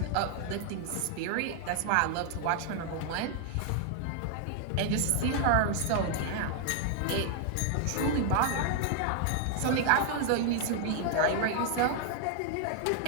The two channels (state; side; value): different; both; correlation 0.00